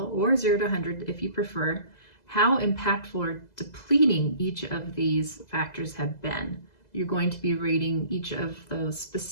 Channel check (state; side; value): late; right; 2.0 ms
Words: or 0 to 100 if you prefer, how impactful or depleting each of these factors have been. You're going to be rating each of those